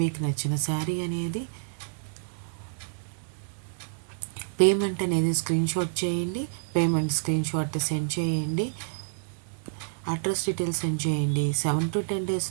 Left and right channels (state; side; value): silent; left; digital silence